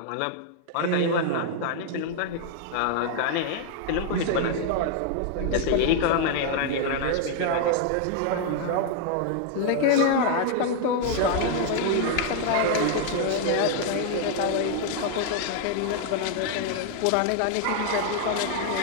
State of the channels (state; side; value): different; both; correlation 0.00